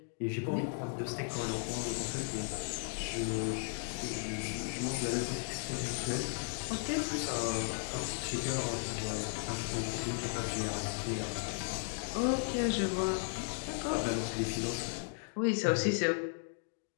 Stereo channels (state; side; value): silent; right; 54 dB below the other